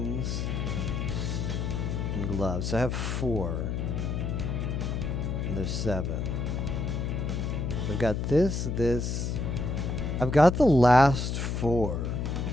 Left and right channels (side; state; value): left; noise; hum, 1 dB below the sound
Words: and gloves. So I have 4. And there's 7. I've got this. I've got the last 4.